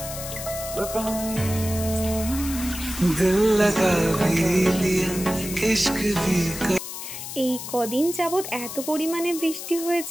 grip on you. दिल लगा भी लिया, इश्क भी कर। এই কদিন যাবৎ এত পরিমাণে বৃষ্টি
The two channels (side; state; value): left; noise; hiss, 8 dB below the sound